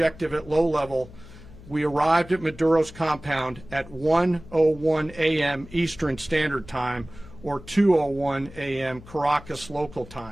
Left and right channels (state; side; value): noise; left; hum, 19 dB below the sound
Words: at low level, we arrived at Maduro's compound at 1:01 a.m. Eastern Standard Time, or 2:01 a.m. Caracas local